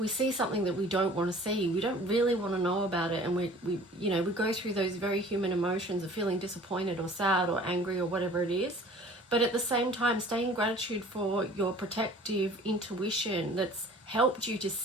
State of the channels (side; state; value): both; normal; correlation 0.48